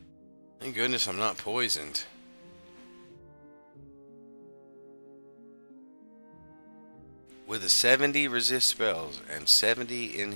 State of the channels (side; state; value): both; inverted; correlation -1.00